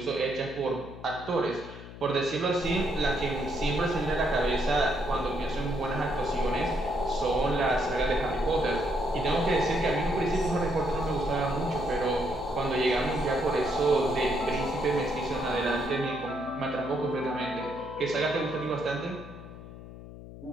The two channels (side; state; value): left; noise; hum, 14 dB below the sound